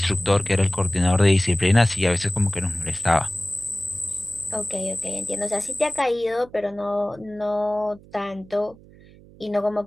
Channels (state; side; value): noise; right; hum, 23 dB below the sound